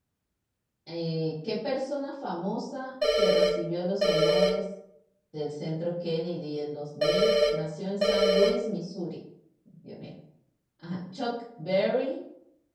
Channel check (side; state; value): both; identical; correlation 1.00